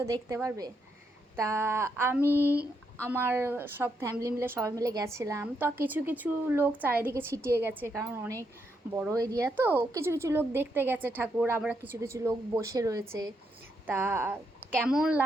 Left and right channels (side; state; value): both; normal; correlation 0.79